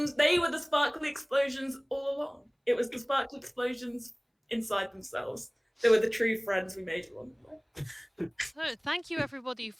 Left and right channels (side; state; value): both; identical; correlation 1.00